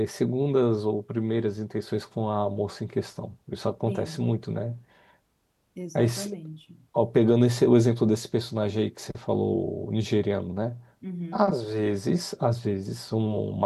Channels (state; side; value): identical; both; correlation 1.00